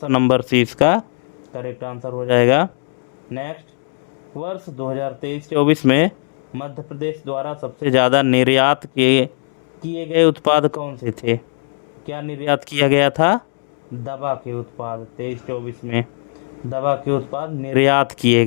नंबर सी इसका करेक्ट आंसर हो जाएगा। नेक्स्ट, वर्ष 2023-24 में मध्य प्रदेश द्वारा सबसे ज़्यादा निर्यात किए गए उत्पाद कौन से थे? क्या निर्यात किया गया था? दवा के उत्पाद। 23-24 में दवा के उत्पाद निर्यात किए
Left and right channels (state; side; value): silent; right; digital silence